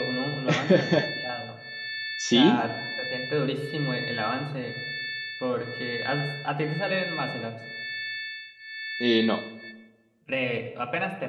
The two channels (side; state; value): both; identical; correlation 1.00